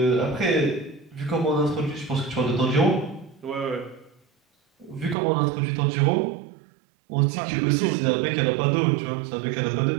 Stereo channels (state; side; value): drops out; left; at 5.2 s